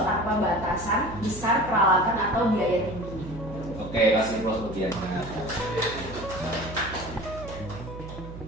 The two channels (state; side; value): noise; right; hum, 12 dB below the sound